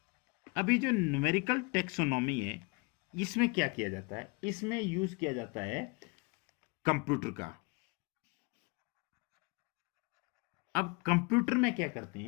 अभी जो न्यूमेरिकल टेक्सोनॉमी है, इसमें क्या किया जाता है, इसमें यूज किया जाता है कंप्यूटर का। अब कंप्यूटर में क्या करते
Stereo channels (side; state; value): right; quieter; 29.5 dB